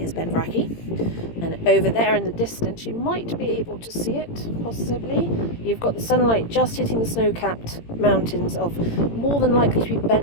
Benvrachy, and over there in the distance you might be able to see it, possibly. You've got the sunlight just hitting the snow-capped mountains of more than likely to be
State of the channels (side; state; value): right; late; 18 ms